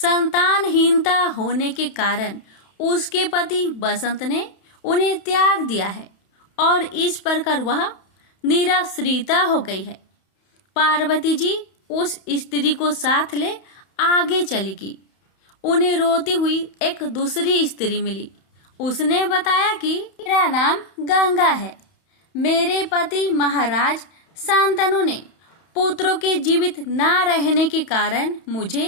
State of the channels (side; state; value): right; late; 31 ms